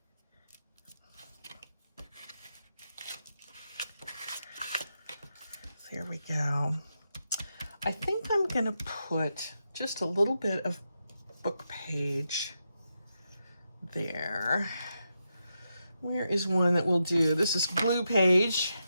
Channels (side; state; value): both; inverted; correlation -0.86